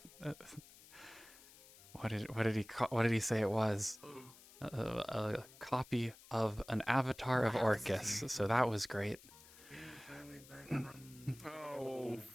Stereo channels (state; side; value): noise; left; hiss, 21 dB below the sound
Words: What did he say it was? A copy of an avatar of Orcus. So that was great. Yeah, finally back from. Oh,